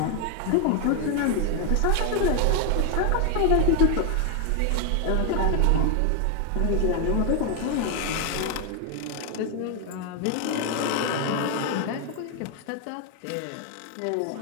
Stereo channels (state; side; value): different; both; correlation 0.01